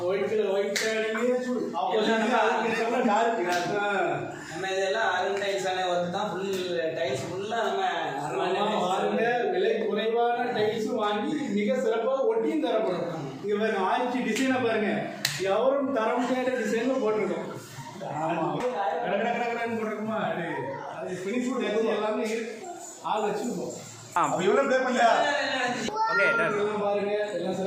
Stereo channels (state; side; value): identical; both; correlation 1.00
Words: ஒயிட் ஷேடிங்கே நம்ம டார்க். நம்ம இதெல்லாம் அருண் டைல்ஸான ஒர்க் தான். டைல்ஸ் ஃபுல்லாக நம்ம வாருங்க. விலை குறைவான டைல்ஸும் வாங்கி மிக சிறப்பாக ஒட்டியும் தரப்படும். இங்கே பாருங்க, ஆயிடுச்சு டிசைனை பாருங்க, எவரும் தர முடியாத டிசைனும் போட்டிருக்கோம். ஆமாம், கடற்கடன்னு போட்டிருக்குமா? அது ஃபினிஷ் எல்லாமே ஆள் வச்சுருக்கோம். இவ்வளோ பே பண்ணலையா? ஓகே, எல்லாம் பாருங்க, எல்லாம்